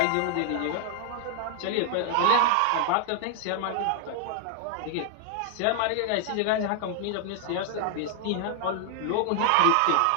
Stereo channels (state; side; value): different; both; correlation 0.00